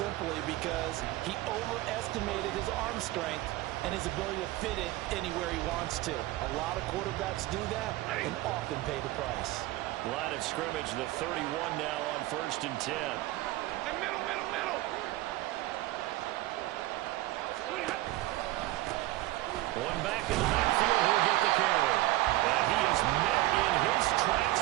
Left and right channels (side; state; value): left; quieter; 17.4 dB